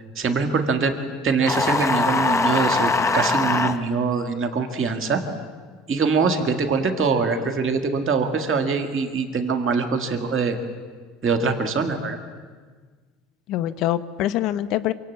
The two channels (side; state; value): both; normal; correlation 0.47